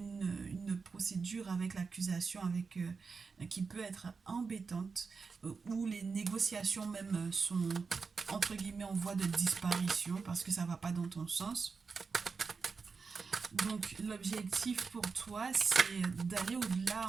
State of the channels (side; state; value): left; quieter; 4.9 dB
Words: procédure avec l'accusation, qui peut être embêtante, où les négociations même sont entre guillemets en voie de disparition parce que ça va pas dans ton sens. Donc l'objectif pour toi, c'est d'aller